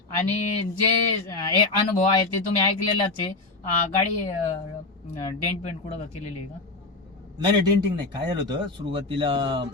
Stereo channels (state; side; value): quieter; right; 3.4 dB